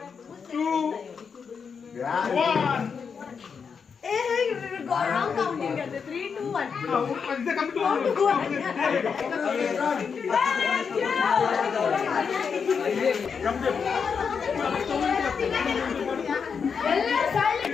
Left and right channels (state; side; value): quieter; right; 6.1 dB